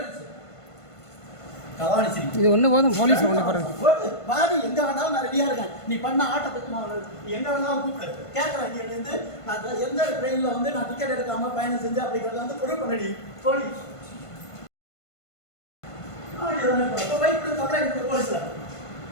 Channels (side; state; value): right; late; 1.5 ms